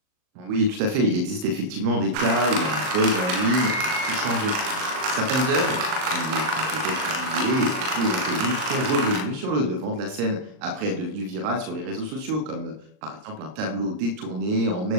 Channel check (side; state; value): left; late; 39 ms